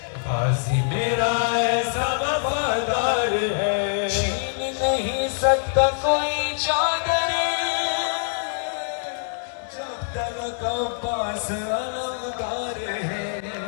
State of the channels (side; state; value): right; silent; digital silence